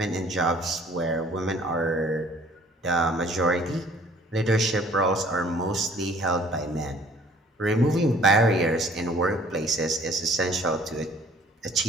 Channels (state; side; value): normal; both; correlation 0.54